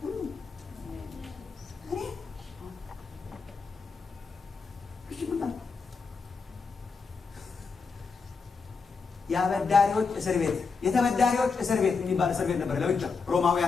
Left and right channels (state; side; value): quieter; right; 5.0 dB